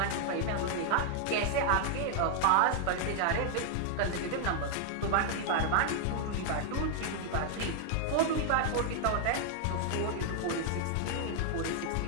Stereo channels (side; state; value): both; different; correlation 0.00